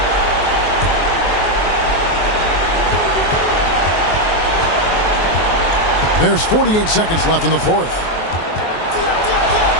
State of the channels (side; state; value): right; late; 23 ms